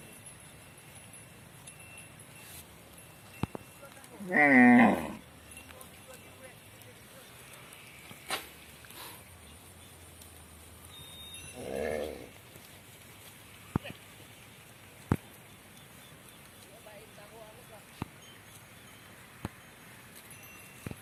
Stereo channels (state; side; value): identical; both; correlation 1.00